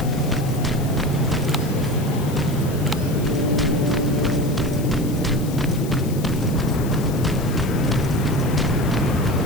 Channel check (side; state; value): left; noise; hiss, 15 dB below the sound